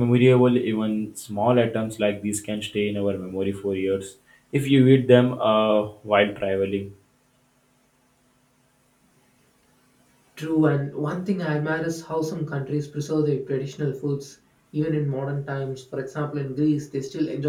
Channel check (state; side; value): identical; both; correlation 1.00